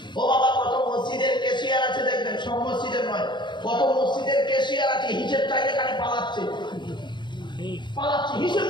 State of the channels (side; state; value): right; late; 0.22 ms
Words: ও বাবা, কত মসজিদের ক্যাশিয়ার আছে দেখবেন, সব মসজিদের নয়, কত মসজিদের ক্যাশিয়ার আছে হিসাব চাইলে খালি পালাচ্ছে, হিসাব